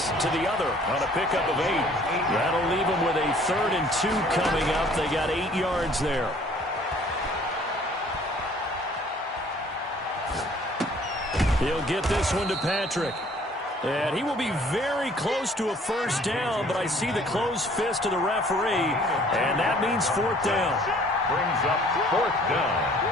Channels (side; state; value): both; normal; correlation 0.56